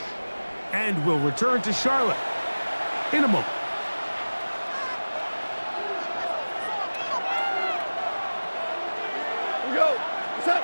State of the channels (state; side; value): inverted; both; correlation -1.00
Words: And will return to Charlotte in a moment. Here we go. What's up?